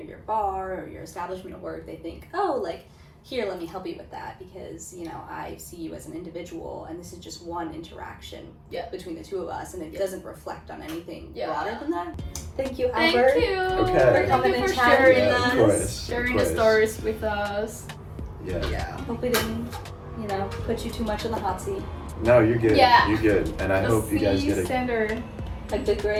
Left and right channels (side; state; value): both; identical; correlation 1.00